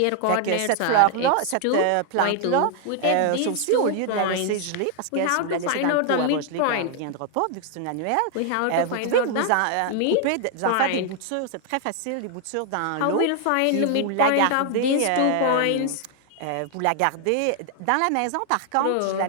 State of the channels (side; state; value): both; different; correlation 0.00